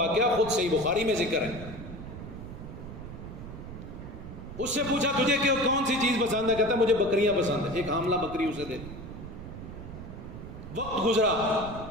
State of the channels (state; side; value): noise; right; rumble, 11 dB below the sound